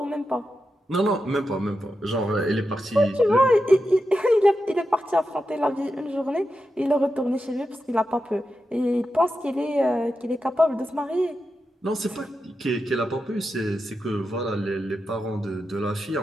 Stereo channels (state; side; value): normal; both; correlation 0.89